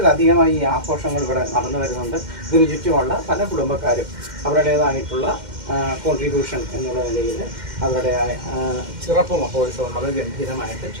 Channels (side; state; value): left; late; 2.1 ms